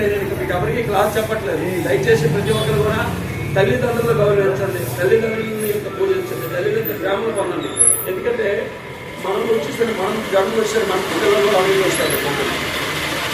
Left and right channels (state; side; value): identical; both; correlation 1.00